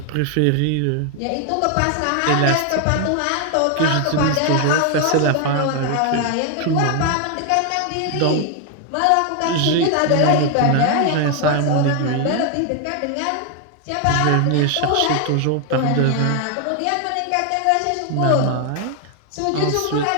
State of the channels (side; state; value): both; different; correlation 0.00